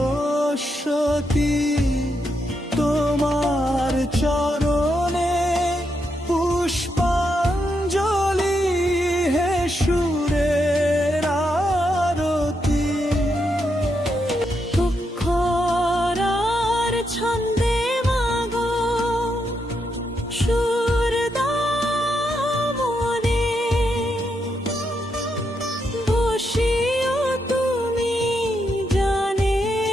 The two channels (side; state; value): both; normal; correlation 0.81